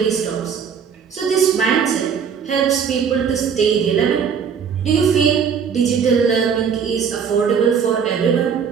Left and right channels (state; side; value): quieter; left; 6.9 dB